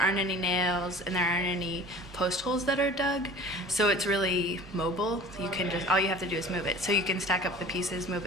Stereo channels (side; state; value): both; normal; correlation 0.43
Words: any nails and there aren't any post holes that are dug, so it's really mobile. You can just, all you have to do is move it. So you can stack up the pieces, move